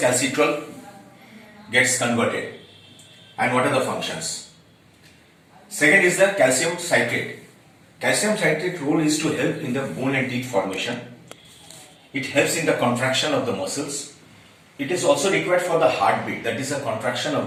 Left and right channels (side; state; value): both; identical; correlation 1.00